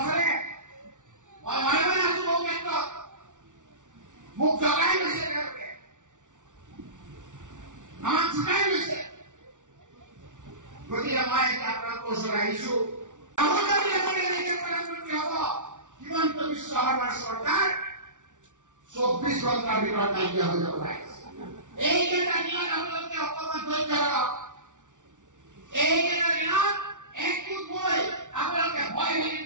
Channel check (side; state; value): left; late; 0.87 ms